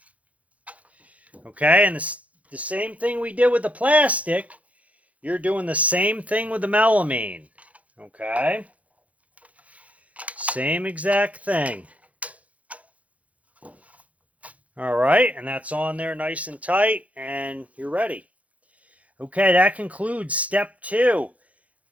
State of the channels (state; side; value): late; left; 0.067 ms